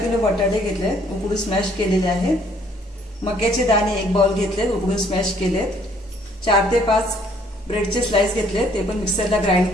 बटाटे घेतले, उकडून स्मॅश केलेले आहेत। मक्याचे दाणे एक बाउल घेतले, उकडून स्मॅश केलेत। 4 ते 5 ब्रेडचे स्लाइस घेतले, ते पण मिक्सरला ग्राइंड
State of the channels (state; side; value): normal; both; correlation 0.62